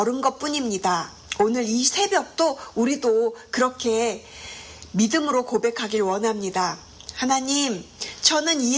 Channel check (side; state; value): both; identical; correlation 1.00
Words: 것뿐입니다. 오늘 이 새벽도 우리도 그렇게 믿음으로 고백하길 원합니다. 하나님, 저는